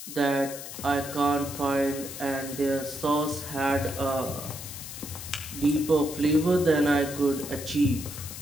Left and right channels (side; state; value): left; noise; hiss, 10 dB below the sound